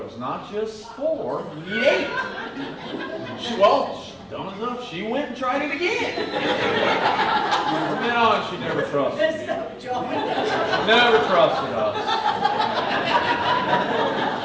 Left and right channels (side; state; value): both; identical; correlation 1.00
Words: not just 4, you need 8. Dumb enough, she went and tried it again. From then on, she never trusted me. Never trusted us.